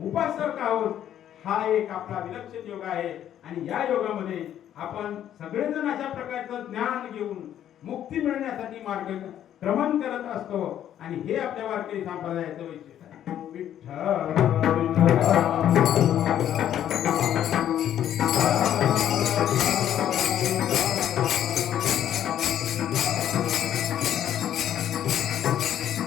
उपासक आहोत. हा एक आपला विलक्षण योग आहे आणि या योगामध्ये आपण सगळेजण अशा प्रकारचं ज्ञान घेऊन मुक्ती मिळण्यासाठी मार्गक्रमण करत असतो. आणि हे आपल्या वारकरी संप्रदायाचं वैशिष्ट्य आहे. विठ्ठल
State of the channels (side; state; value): right; quieter; 10.8 dB